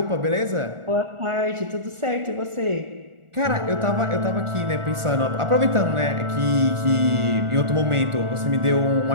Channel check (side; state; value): left; late; 1.4 ms